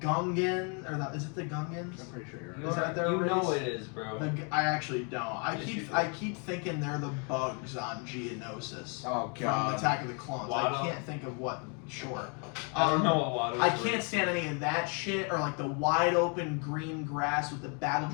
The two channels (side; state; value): right; quieter; 37.5 dB